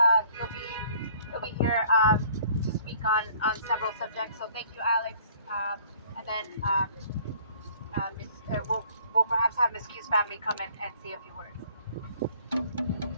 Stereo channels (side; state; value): both; inverted; correlation -0.56